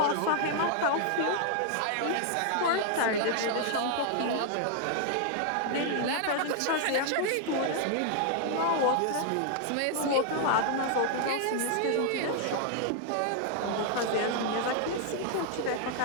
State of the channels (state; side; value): different; both; correlation 0.00